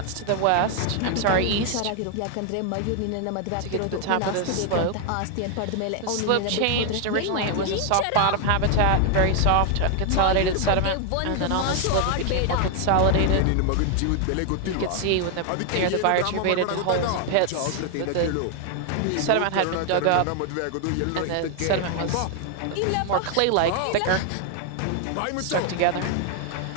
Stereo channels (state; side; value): different; both; correlation 0.00